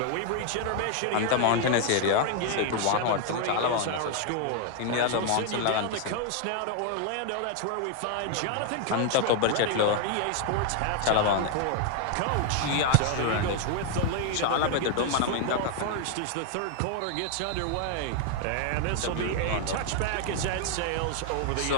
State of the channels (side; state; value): both; different; correlation 0.00